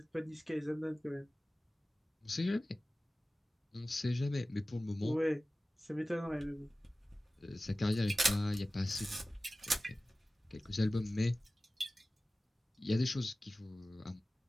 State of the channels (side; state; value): both; normal; correlation 0.96